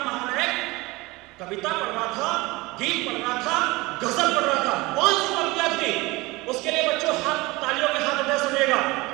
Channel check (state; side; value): quieter; left; 22.2 dB